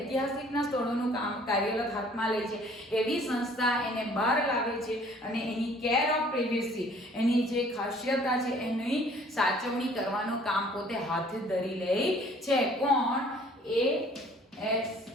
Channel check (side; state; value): both; normal; correlation 0.55